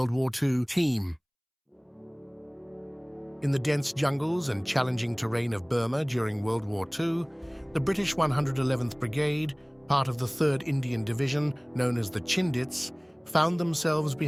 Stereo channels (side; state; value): both; identical; correlation 1.00